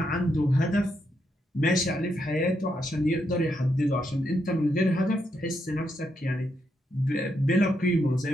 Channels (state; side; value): normal; both; correlation 0.80